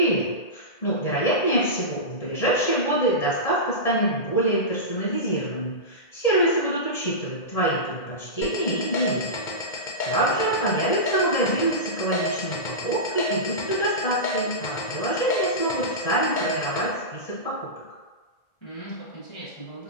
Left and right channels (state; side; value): late; right; 1.8 ms